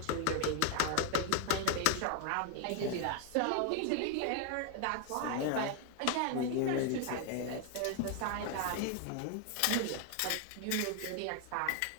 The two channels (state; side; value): different; both; correlation 0.00